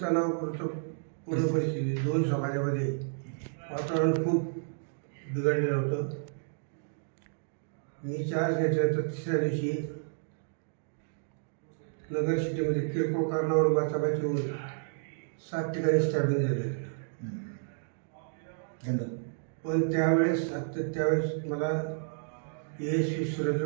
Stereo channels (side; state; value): left; silent; digital silence